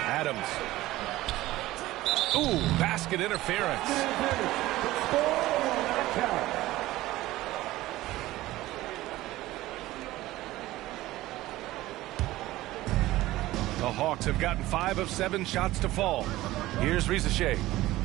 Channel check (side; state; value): left; quieter; 16.9 dB